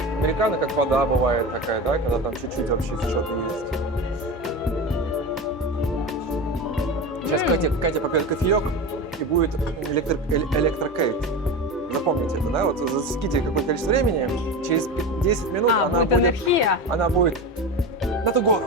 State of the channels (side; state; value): both; normal; correlation 0.24